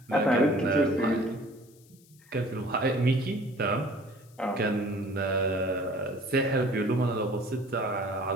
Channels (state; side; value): noise; left; hiss, 28 dB below the sound